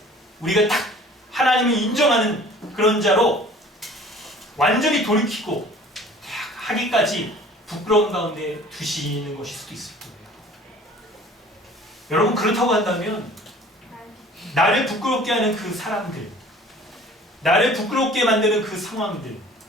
우리가 딱 하나님을 인정하는 그런 자로 완전히 돌이키고 하기까지 부끄러움 가운데 두시는 것일 수도 있을 거예요. 여러분 그렇다고 한다면 나를 부끄럽게 하는 그 사람들, 나를 부끄럽게 만드는 그 상황들,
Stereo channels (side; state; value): both; normal; correlation 0.48